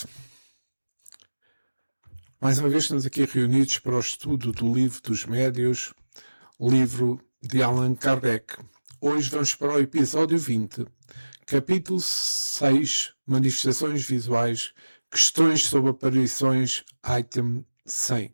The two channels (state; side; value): inverted; both; correlation -1.00